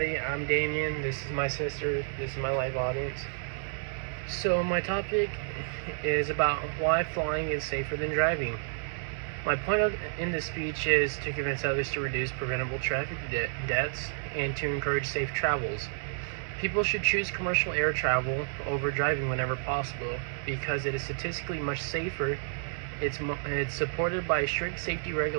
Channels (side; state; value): left; silent; 58 dB below the other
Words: I'm Damien, this is my sister, this is my live audience. So my topic is about why flying is safer than driving. My point in this speech is to convince others to reduce preventable traffic deaths and to encourage safe travels. People should choose commercial air travel over driving whenever possible because it is statistically much safer. It's supported by strict safety